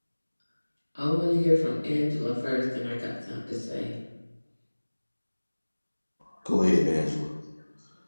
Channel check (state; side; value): inverted; both; correlation -1.00